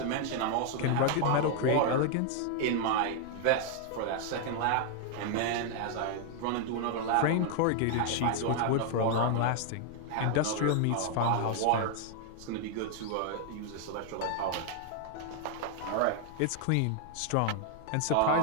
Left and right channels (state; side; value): different; both; correlation 0.00